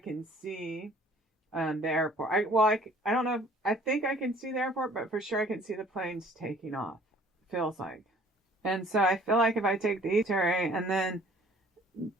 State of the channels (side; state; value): both; normal; correlation 0.54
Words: can see the airport. I don't know. I think I can see the airport, but for sure I can see the planes taking off. Feels like. And so I feel like if I take the Terry and then